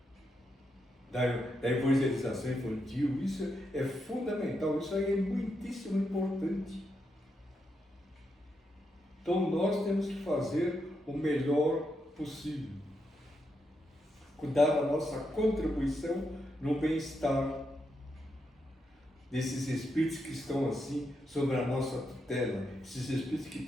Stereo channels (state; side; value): normal; both; correlation 0.83